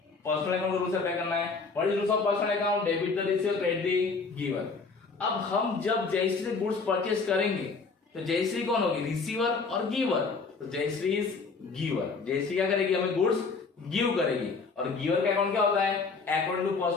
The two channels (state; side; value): quieter; right; 4.5 dB